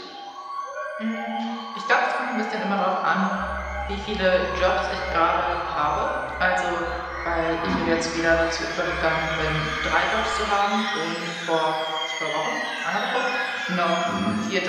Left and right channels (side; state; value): both; identical; correlation 1.00